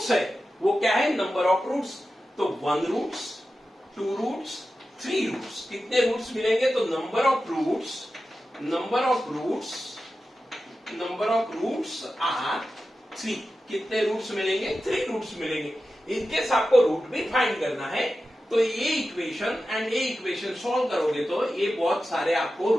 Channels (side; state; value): both; normal; correlation 0.93